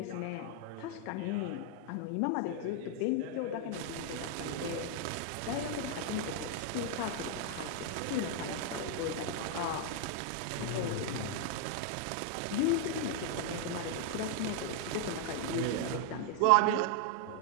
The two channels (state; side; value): different; both; correlation 0.00